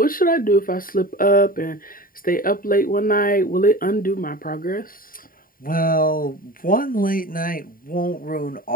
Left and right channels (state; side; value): late; right; 0.41 ms